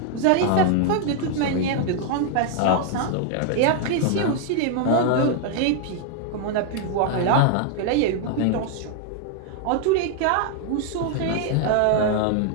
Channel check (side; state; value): both; different; correlation 0.00